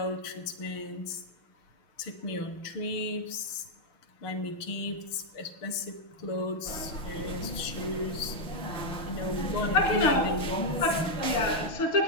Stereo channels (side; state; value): right; late; 6.6 ms